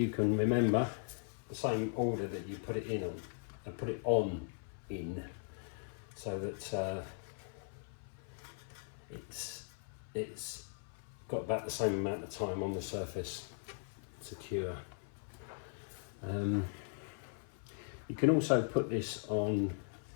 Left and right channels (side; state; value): right; silent; 52 dB below the other